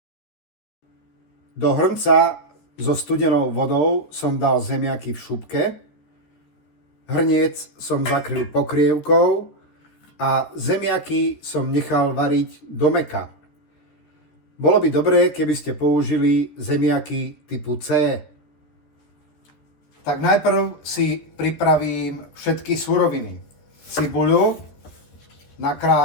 Do hrnca so studenou vodou som dal zemiaky v šupke. Hrniec som zakryl pokrievkou a zemiaky som nechal variť do mäka. Bolo by dobré, keby ste použili zemiaky typu C. Tak najprv si pripravím všetky suroviny. Cibuľu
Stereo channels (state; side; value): late; right; 13 ms